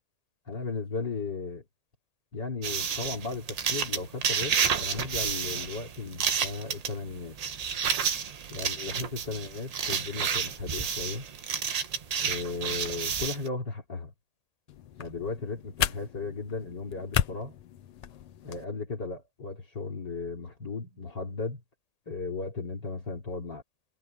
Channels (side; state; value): left; late; 1.8 ms